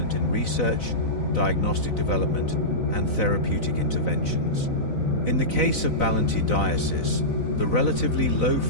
in research, diagnostic development, and therapeutic interventions. In the case of Balantioides, the relatively low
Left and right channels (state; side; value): late; right; 4.0 ms